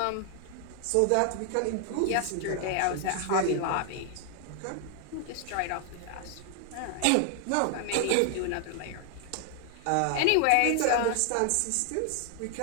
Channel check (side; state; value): both; different; correlation 0.00